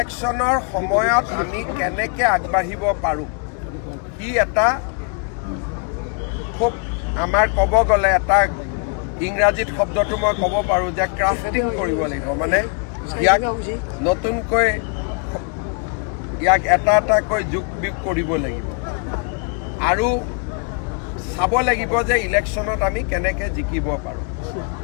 সময়ত আমি কেনেকৈ আগবাঢ়িব পাৰোঁ কি এটা খুব আমাৰ ক'ব গ'লে এটা ইংৰাজীত শব্দটো মই ক'ব পাৰোঁ যে ক্ৰাফটিং কৰিব লাগিব মানে ইয়াক নতুনকৈ ইয়াক এটা এটাকৈ যোগ বিয়োগ কৰিব লাগিব আৰু চাব লাগিব যে ইলেকশ্যনত আমি কেনেকৈ জিকিব পাৰোঁ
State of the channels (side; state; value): right; quieter; 36.1 dB